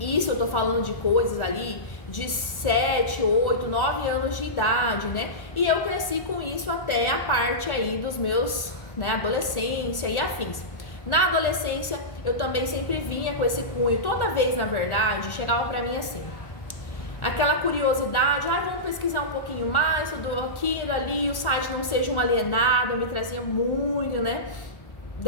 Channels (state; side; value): late; right; 1.4 ms